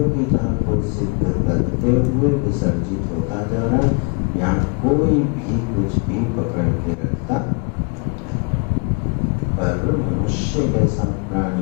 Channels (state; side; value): quieter; right; 34.1 dB